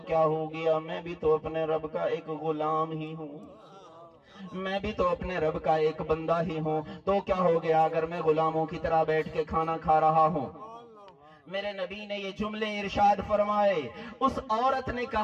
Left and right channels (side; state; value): both; identical; correlation 1.00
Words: ہو گیا، میں بھی تو اپنے رب کا ایک غلام ہی ہوں، میں بھی تو اپنے رب کا ایک بندہ ہی ہوں، تو کیا ہو گیا اگر میں غلاموں کی طرح بیٹھ کے کھانا کھا رہا ہوں۔ میرے نبی نے یہ جملے ارشاد فرمائے۔ اس عورت نے